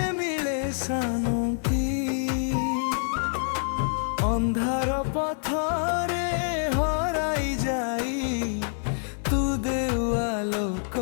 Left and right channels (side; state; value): right; silent; digital silence